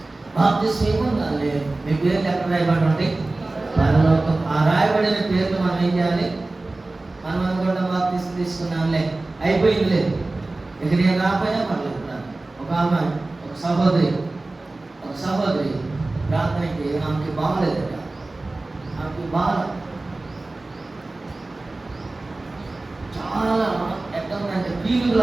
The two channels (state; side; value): quieter; left; 3.1 dB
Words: బాప్తిసం ఏముండాలి? మీ పేర్లు ఎక్కడ రాయబడి ఉంటాయి? పరలోకం. ఆ రాయబడిన పేర్లు మనం ఏం చేయాలి? మనం అనుకుంటాం బాప్తిసం తీసుకున్నాంలే, అయిపోయింది, లేదు, ఇక నేను రాకపోయినా పర్లేదు. ఒక ఆమె, ఒక సహోదరి ప్రార్థనకి ఆమెకి బాగలేదట. ఆమెకి బాగా చాలా ఎట్లా ఉందంటే